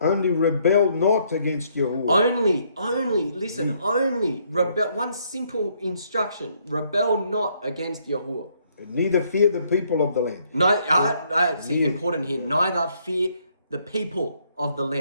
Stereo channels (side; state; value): both; inverted; correlation -0.69